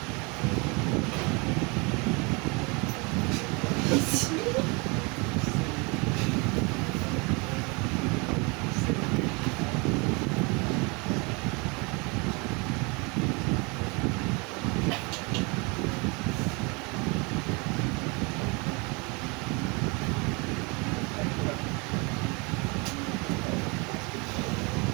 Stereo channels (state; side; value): quieter; left; 29.3 dB